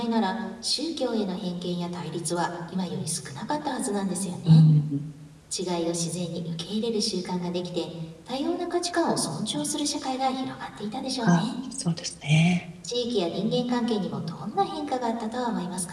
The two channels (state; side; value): identical; both; correlation 1.00